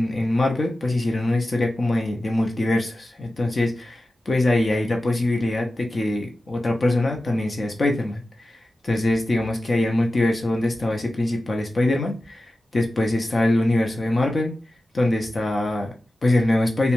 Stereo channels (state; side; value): normal; both; correlation 0.94